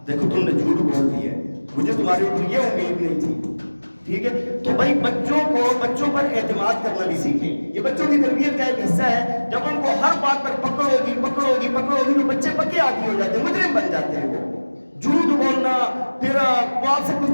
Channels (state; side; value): inverted; both; correlation -1.00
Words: دیکھو تم نے جھوٹ بول دیا ہے، مجھے تمہارے اوپر یہ امید نہیں تھی، ٹھیک ہے۔ تو بھائی بچوں پر اعتماد کرنا بھی سیکھیں، یہ بچوں کی تربیت کا ایک حصہ ہے۔ جب ان کو ہر بات پر پکڑو گی تو بچے پکے عادی ہو جاتے ہیں، مجرم بن جاتے ہیں وہ۔ جھوٹ بولنا، پھر وہ آپ سے کوئی